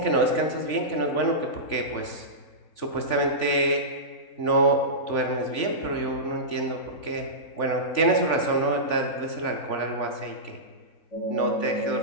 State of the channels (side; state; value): right; late; 3.5 ms